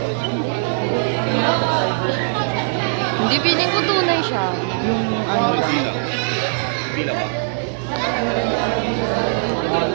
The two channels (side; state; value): left; silent; 65 dB below the other